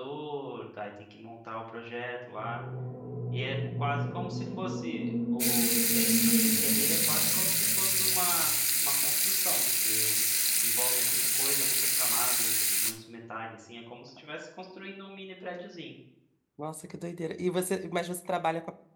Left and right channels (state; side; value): identical; both; correlation 1.00